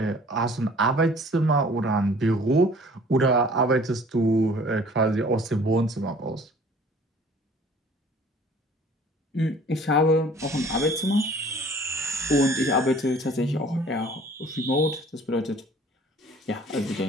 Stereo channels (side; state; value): both; normal; correlation 0.51